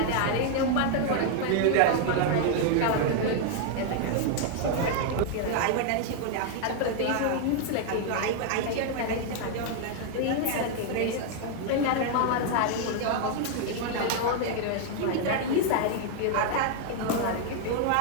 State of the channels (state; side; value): different; both; correlation 0.00